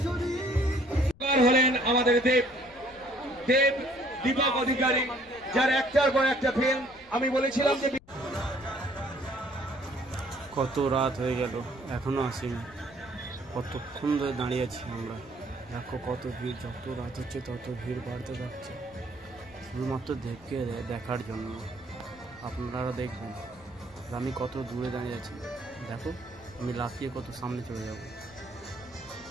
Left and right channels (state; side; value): noise; left; rumble, 24 dB below the sound